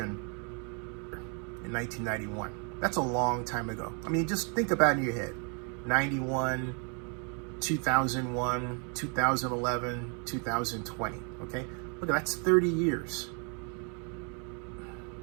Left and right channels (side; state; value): left; quieter; 37.7 dB